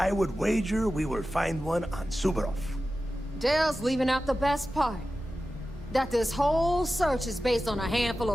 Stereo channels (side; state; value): both; normal; correlation 0.93